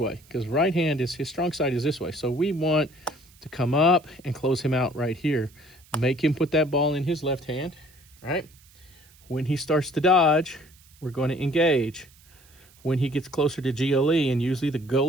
because right hand is, his strong side is this way. So we want to come up and close him out right here. Make him put that ball in his left hand, right? When he starts to dodge, we're going to engage. When he gets closer to GLE, and usually the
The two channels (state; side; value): noise; right; hiss, 28 dB below the sound